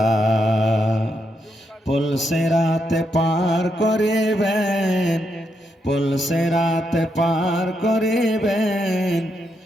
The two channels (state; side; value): normal; both; correlation 0.80